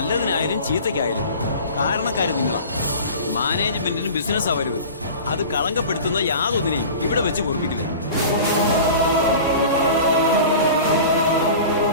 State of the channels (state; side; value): inverted; both; correlation -0.38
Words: ചീത്തയ്ക്കായാലും കാരണക്കാര് നിങ്ങളാ. മാനേജ്മെന്റിനും ബിസിനസ് അവരുത്. അത് കളങ്കപ്പെടുത്തുന്ന യാതൊന്നിനെയും ഇവിടെ വെച്ച് കുറിപ്പിക്കില്ല.